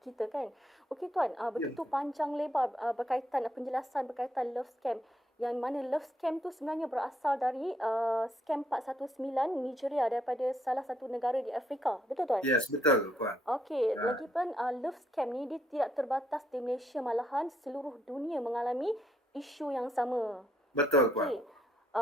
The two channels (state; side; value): normal; both; correlation 0.73